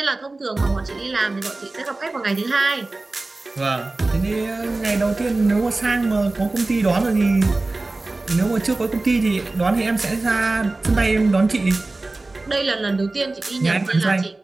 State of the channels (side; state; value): left; quieter; 3.1 dB